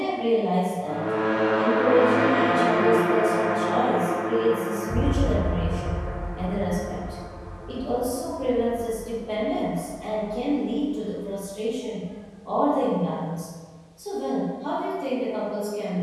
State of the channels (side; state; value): both; identical; correlation 1.00